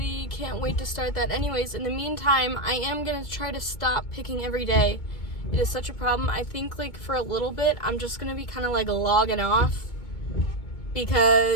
can't wait to start that. Anyways, in the meantime, I am gonna try to stop picking every day. It is such a problem. I think like for a little bit, I'm just gonna be kind of like logging off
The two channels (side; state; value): right; late; 2.2 ms